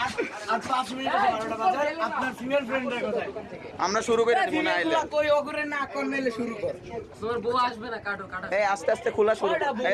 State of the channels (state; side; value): identical; both; correlation 1.00